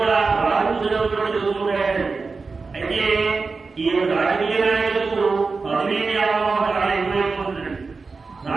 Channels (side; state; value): left; quieter; 4.3 dB